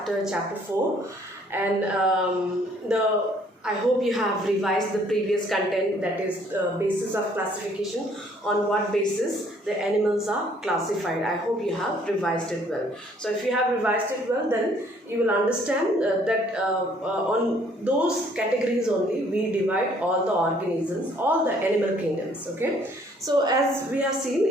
chapter 4. And I hope you have revised the previous content, that is basis of classification, on what basis the animals are classified. I hope you have revised it well. So if you have revised it well, then you will understand that on those categories only we divide all the organisms, all the animal kingdoms. Okay. So as we have seen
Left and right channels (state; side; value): normal; both; correlation 0.62